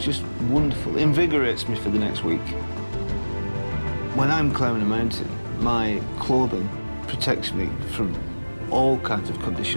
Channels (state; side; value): inverted; both; correlation -1.00